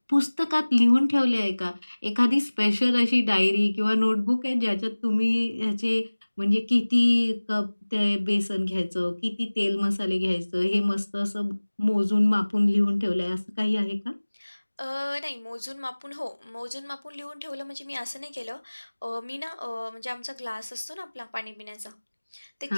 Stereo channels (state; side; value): inverted; both; correlation -1.00